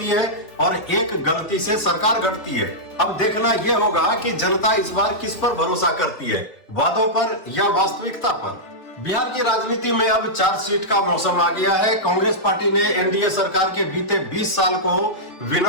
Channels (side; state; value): right; late; 3.3 ms